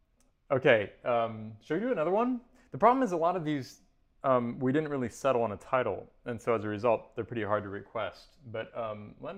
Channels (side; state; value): both; identical; correlation 1.00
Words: should we do another one? The problem is a lot of these, we didn't really settle on a title, and so as a result, they're pretty hard to request. But let